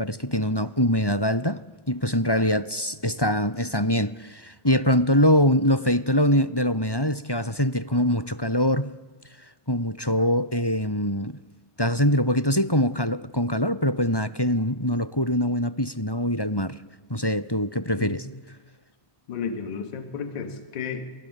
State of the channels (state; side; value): late; right; 1.1 ms